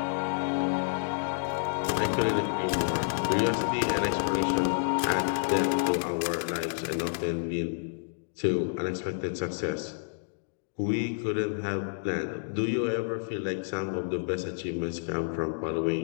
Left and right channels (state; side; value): silent; right; digital silence